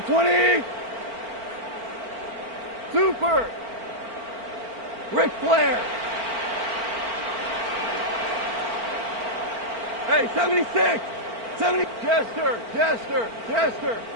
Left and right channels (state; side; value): late; left; 4.4 ms